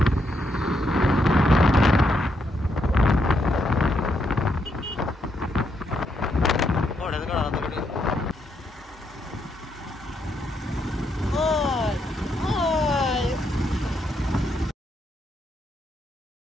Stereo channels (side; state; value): both; normal; correlation 0.78